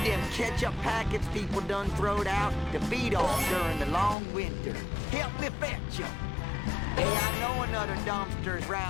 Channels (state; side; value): drops out; right; at 4.2 s